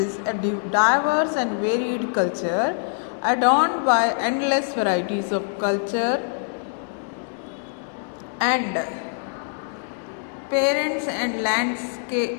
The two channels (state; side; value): silent; right; 63 dB below the other